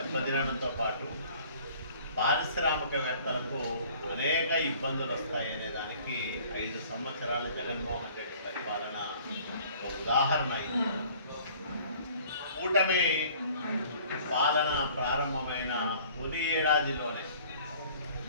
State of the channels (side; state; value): both; inverted; correlation -0.52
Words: పాటు పారిశ్రామికవేత్తలకు అనేక ఇబ్బందులు వస్తాయనే దానికి 5 సంవత్సరాలు జగన్మోహన్ రెడ్డి పరిపాలన ఒక ఉదాహరణ అయింది. కూటమి పాలన ప్రారంభమైన తొలి ఏడాదిలోనే